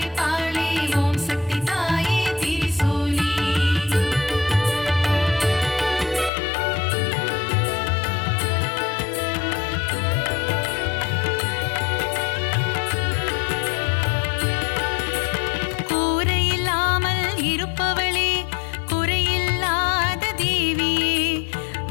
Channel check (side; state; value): right; drops out; at 6.3 s